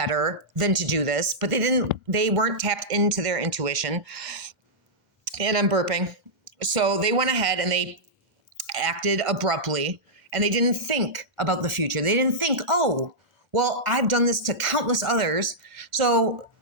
than to do this, but they weren't tapped into their intuition. And I'm burping. So they went ahead and they acted abruptly, and they didn't think about the future. They didn't think, oh, well, I've done this to countless others, so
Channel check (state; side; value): late; left; 2.1 ms